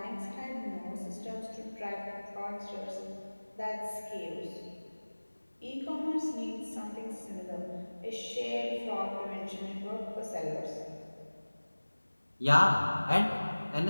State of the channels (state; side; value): inverted; both; correlation -1.00